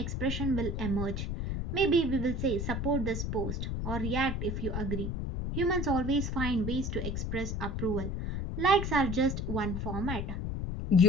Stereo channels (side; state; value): left; noise; rumble, 2 dB below the sound